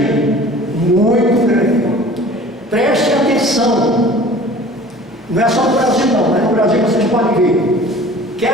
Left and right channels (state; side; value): normal; both; correlation 0.45